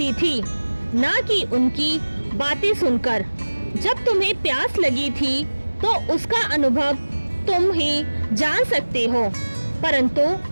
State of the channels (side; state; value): both; inverted; correlation -1.00